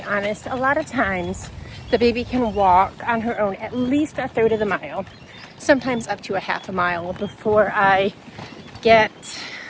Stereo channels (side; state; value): both; identical; correlation 1.00